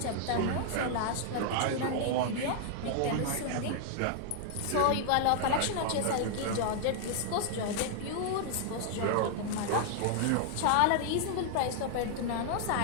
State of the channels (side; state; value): both; different; correlation 0.00